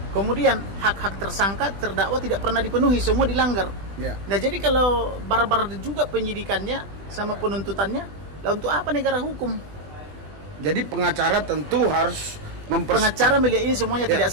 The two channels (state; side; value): late; left; 20 ms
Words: Kemudian hak-hak tersangka terdakwa tidak pernah dipenuhi, semua dilanggar. Nah, jadi kalau barbar juga penyidikannya sama penuntutannya, lah untuk apa negara hukum? Jadi pengacara tentu harus pengacara melihat ini semuanya